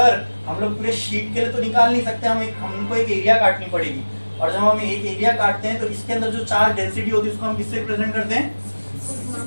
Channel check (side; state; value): both; inverted; correlation -1.00